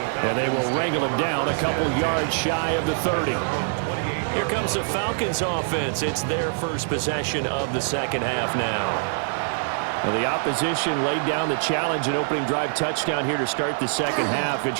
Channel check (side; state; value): left; silent; 62 dB below the other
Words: And they will wrangle him down a couple yards shy of the 30. Here comes the Falcons offense. It's their first possession of the second half now. Well, the opposition laid down the challenge and opening drive touchdown here to start the second half. And,